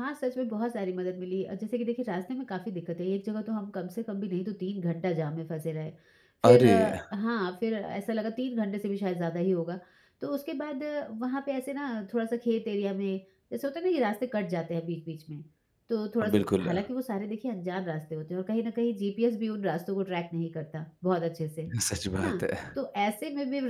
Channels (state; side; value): identical; both; correlation 1.00